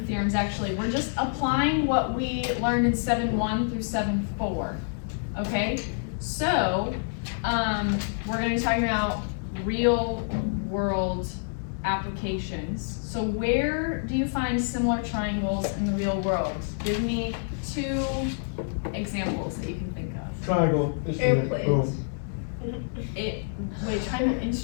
theorems actually. We're just applying what we learned in 7.1 through 7.4. Okay? So, we're going to be talking about real world applications. So where do you find similar triangles in the real world? Give me 2 examples that you can think of. Triangle, instrument, boom. Wait, triangle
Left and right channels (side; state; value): right; silent; digital silence